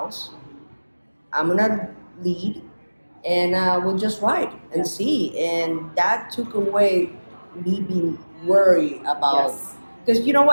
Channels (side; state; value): both; inverted; correlation -1.00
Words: I'm gonna lead, and we'll just ride and see." And that took away me being worried about. Yes. Because you know